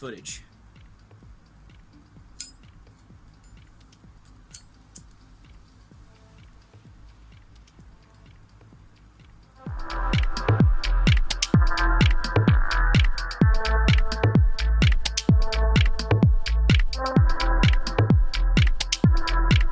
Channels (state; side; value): identical; both; correlation 1.00